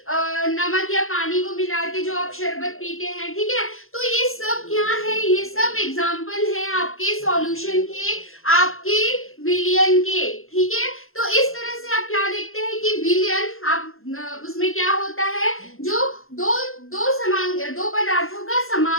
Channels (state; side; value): late; right; 0.61 ms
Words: नमक या पानी को मिला के जो आप शरबत पीते हैं, ठीक है। तो ये सब क्या है? ये सब एग्जांपल है आपके सॉल्यूशन के, आपके विलयन के। ठीक है, तो इस तरह से आप क्या देखते हैं कि विलयन, आप उसमें क्या होता है, जो दो पदार्थों का